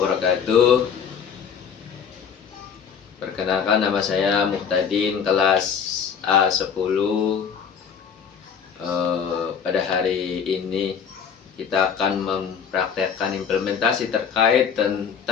Perkenalkan, nama saya Muhtadin, kelas A10. Pada hari ini kita akan mempraktekkan implementasi terkait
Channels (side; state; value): right; quieter; 7.0 dB